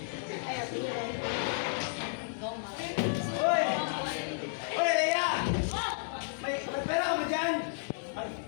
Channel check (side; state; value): right; silent; digital silence